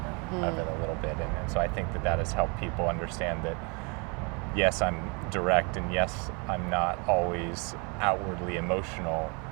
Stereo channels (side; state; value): left; quieter; 32.8 dB